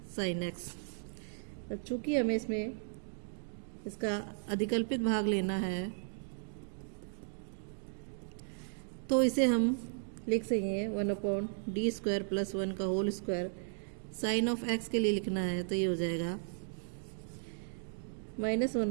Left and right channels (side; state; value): left; silent; digital silence